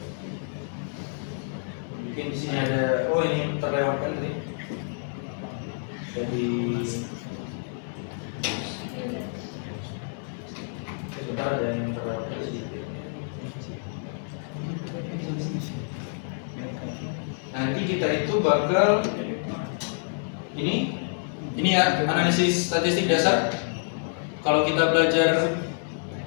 Mungkin di sini ada, ini terlewatkan tadi. Jadi sebentar ada yang terlewatkan sedikit. Nanti kita itu bakal ini ya analisis statistik dasar. Kalau kita belajar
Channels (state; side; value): silent; right; 60 dB below the other